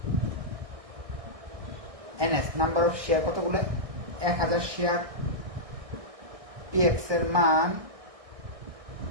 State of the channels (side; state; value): left; late; 1.6 ms